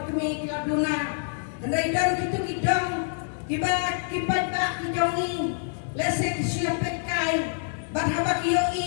kemi ki laduna henrei dong ki dong ki ba ki ki jongi lese ki siapet kai ban haba ki yo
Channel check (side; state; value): right; silent; 61 dB below the other